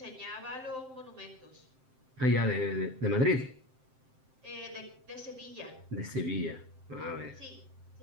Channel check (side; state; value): left; late; 7.7 ms